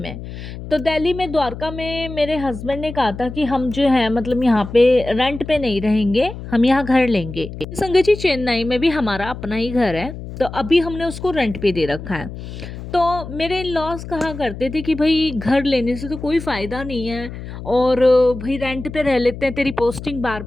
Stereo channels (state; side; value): noise; left; hum, 11 dB below the sound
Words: तो दिल्ली में द्वारका में मेरे हस्बैंड ने कहा था कि हम जो है मतलब यहाँ पे रेंट पे नहीं रहेंगे, हम यहाँ घर लेंगे। संगत जी चेन्नई में भी हमारा अपना ही घर है, तो अभी हमने उसको रेंट पे दे रखा है। तो मेरे इन-लॉज़ कहा करते थे कि भई घर लेने से तो कोई फ़ायदा नहीं है, और भई रेंट पे रह लेते हैं, तेरी पोस्टिंग